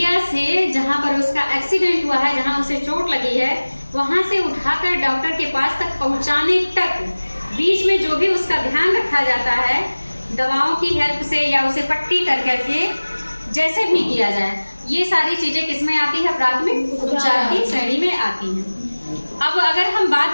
से, जहां पर उसका एक्सीडेंट हुआ है, जहां उसे चोट लगी है, वहां से उठाकर डॉक्टर के पास तक पहुंचाने तक बीच में जो भी उसका ध्यान रखा जाता है, दवाओं की हेल्प से या उसे पट्टी कर करके जैसे भी किया जाए, ये सारी चीजें किसमें आती है? प्राथमिक उपचार की श्रेणी में आती हैं। अब अगर हम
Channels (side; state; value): both; inverted; correlation -1.00